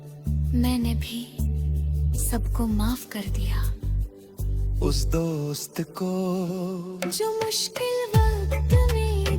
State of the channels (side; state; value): both; identical; correlation 1.00